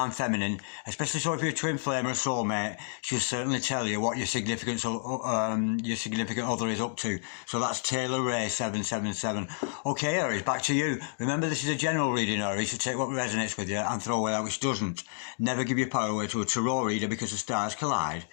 feminine, especially so if you're a twin flame or a soulmate. She'll certainly tell you what your significant other is up to. So that's Taylor Ray 777. Okay, Aries, back to you. Remember, this is a general reading, Aries, so take what resonates with you and throw away that which doesn't. Never give your power away to a tarot reader because the stars collide,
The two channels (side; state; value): right; silent; digital silence